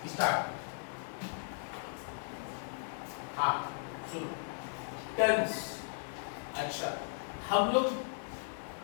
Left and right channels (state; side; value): silent; right; digital silence